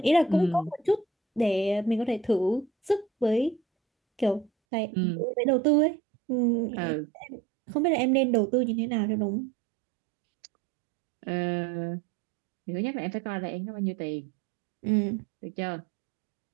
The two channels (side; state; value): left; drops out; at 4.5 s